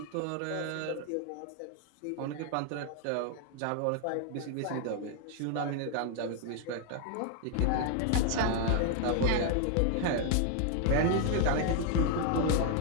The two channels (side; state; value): both; different; correlation 0.00